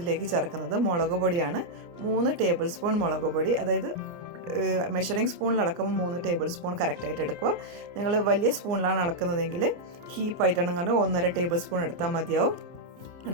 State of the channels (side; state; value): left; late; 29 ms